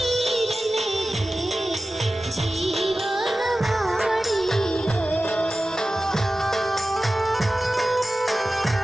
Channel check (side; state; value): both; normal; correlation 0.95